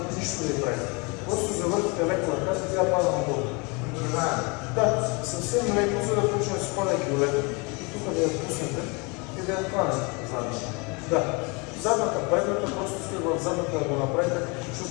нищо да я прави. Просто завъртите леко ръката и тя пада надолу. Да, съвсем леко, за да почне да се падайки леко. И тук да я пуснете и да я хванете задната. Да, задната, предната, просто сте в задната да го направите,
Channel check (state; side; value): quieter; right; 29.7 dB